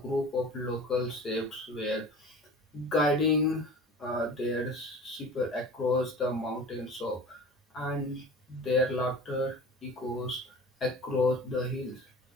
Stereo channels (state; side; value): normal; both; correlation 0.39